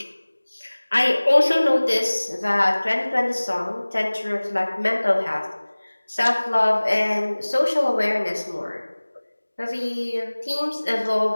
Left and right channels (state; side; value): inverted; both; correlation -1.00